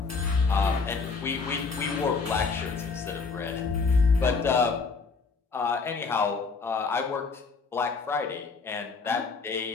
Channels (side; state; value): right; quieter; 4.6 dB